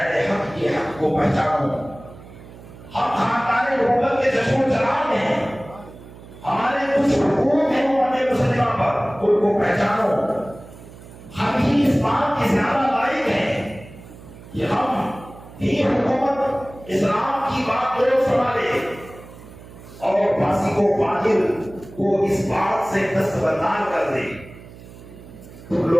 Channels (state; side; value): noise; right; hum, 18 dB below the sound